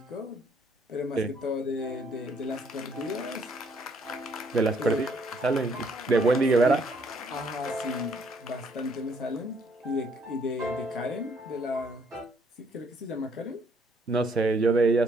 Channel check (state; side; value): normal; both; correlation 0.66